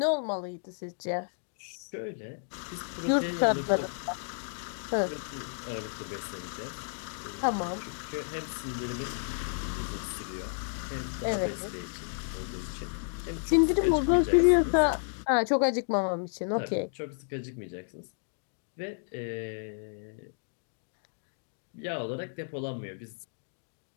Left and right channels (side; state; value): right; silent; digital silence